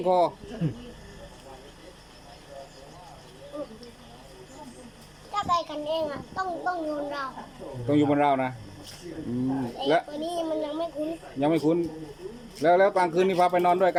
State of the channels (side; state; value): both; identical; correlation 1.00